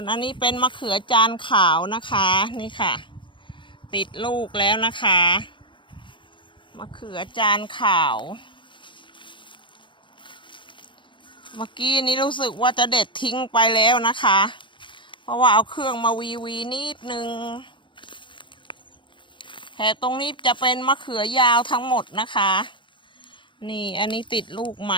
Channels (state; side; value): late; right; 0.24 ms